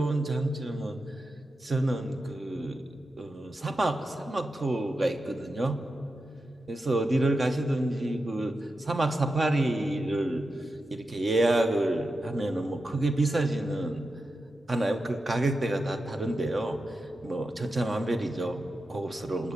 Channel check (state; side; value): normal; both; correlation 0.90